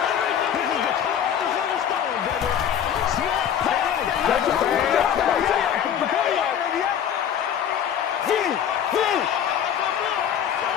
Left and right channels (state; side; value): quieter; right; 9.1 dB